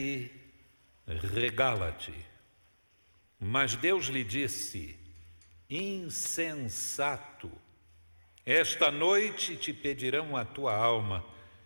regala-te. Mas Deus lhe disse: Insensato, esta noite te pedirão a tua alma,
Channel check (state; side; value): inverted; both; correlation -1.00